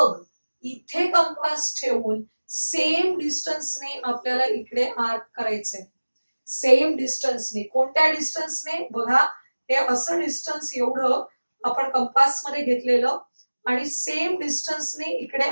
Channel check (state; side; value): inverted; both; correlation -1.00